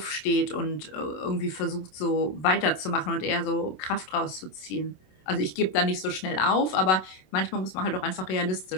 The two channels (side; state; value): right; late; 27 ms